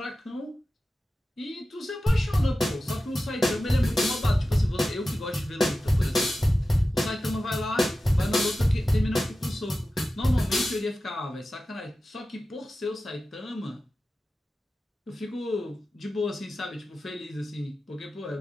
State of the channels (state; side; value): normal; both; correlation 0.94